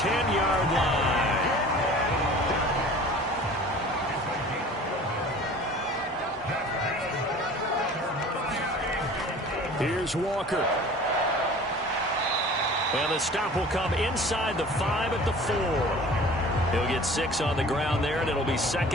line. Here's Walker. And the stop will come inside the 5 at the 4. He'll get 6 on the ground there, and it'll be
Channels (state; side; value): normal; both; correlation 0.44